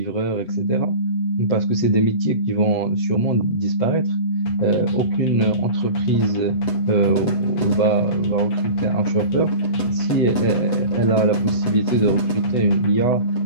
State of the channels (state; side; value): late; right; 8.1 ms